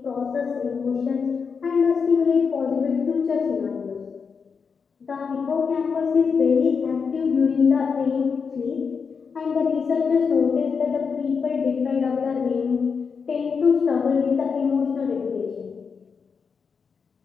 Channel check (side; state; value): right; quieter; 5.7 dB